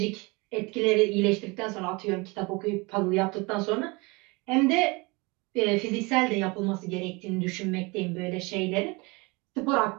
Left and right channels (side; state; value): left; quieter; 26.5 dB